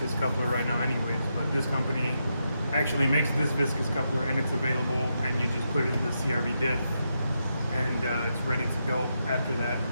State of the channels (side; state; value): both; inverted; correlation -0.84